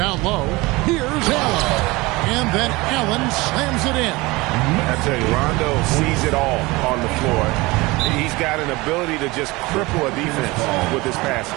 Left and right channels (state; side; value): quieter; left; 22.4 dB